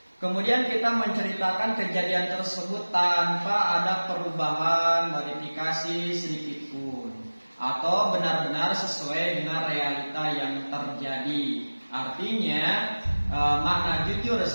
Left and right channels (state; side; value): inverted; both; correlation -1.00